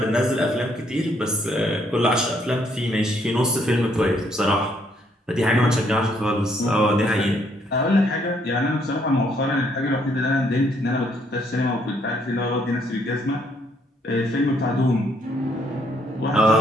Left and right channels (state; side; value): normal; both; correlation 0.69